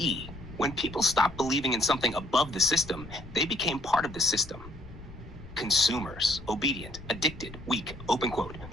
When people stopped believing in something above the system, they became part of the system. Consumers, obedient, addicted, weak, open quote.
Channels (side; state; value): left; noise; rumble, 16 dB below the sound